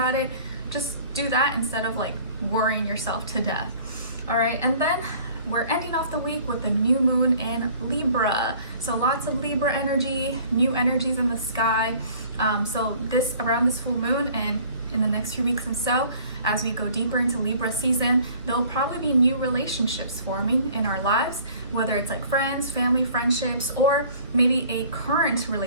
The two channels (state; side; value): inverted; both; correlation -0.51